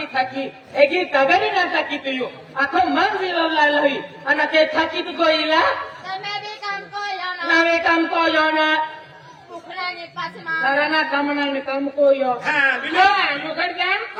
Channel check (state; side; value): identical; both; correlation 1.00